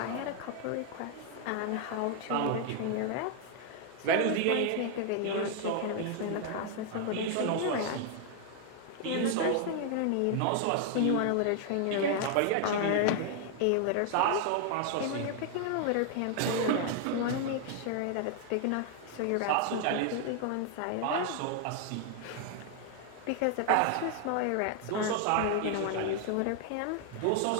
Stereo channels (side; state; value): both; different; correlation 0.00